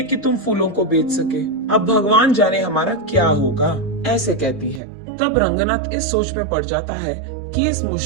कि तुम फूलों को बेच सके। अब भगवान जाने हमारा क्या होगा, ऐसे कहती है। तब रंगनाथ इस सोच में पड़ जाता है कि इस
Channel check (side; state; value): left; drops out; at 4.8 s